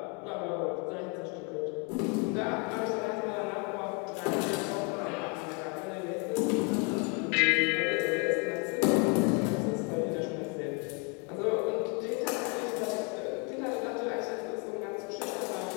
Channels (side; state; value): right; quieter; 33.8 dB